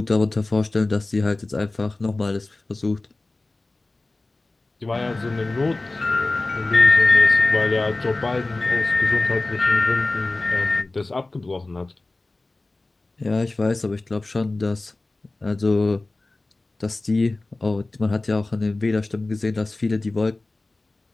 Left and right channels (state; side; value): quieter; right; 3.1 dB